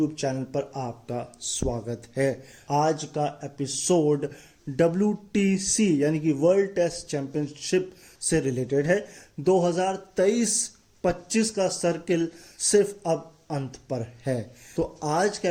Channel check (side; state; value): both; identical; correlation 1.00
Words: चैनल पर आपका स्वागत है। आज का एपिसोड WTC यानी कि वर्ल्ड टेस्ट चैंपियनशिप से रिलेटेड है। 2023-25 का सर्किल सिर्फ अब अंत पर है। तो आज के